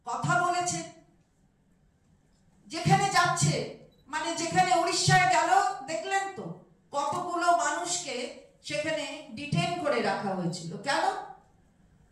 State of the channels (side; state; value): both; identical; correlation 1.00